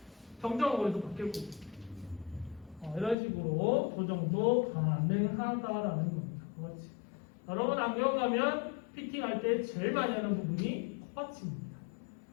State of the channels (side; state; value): right; drops out; at 3.2 s